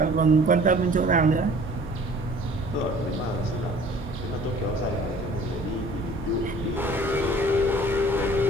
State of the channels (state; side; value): normal; both; correlation 0.50